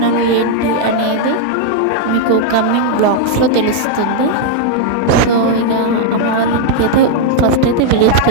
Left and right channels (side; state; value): both; different; correlation 0.00